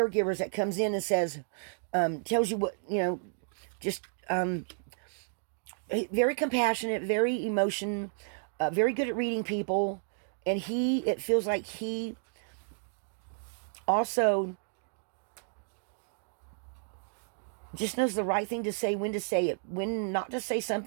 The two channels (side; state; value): left; silent; digital silence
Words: that comes in and says, tells you what, just very compassionate, very very good at reading people. And it feels like he also just knows the right thing to say, when to say it, when not to say